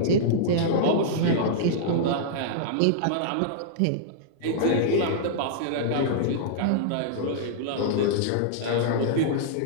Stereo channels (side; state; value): both; different; correlation -0.02